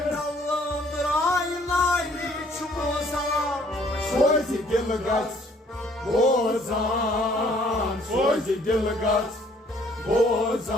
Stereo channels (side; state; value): both; normal; correlation 0.61